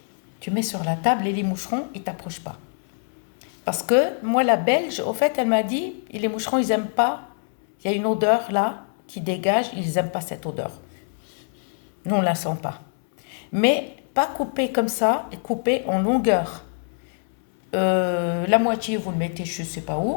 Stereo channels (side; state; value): right; silent; 62 dB below the other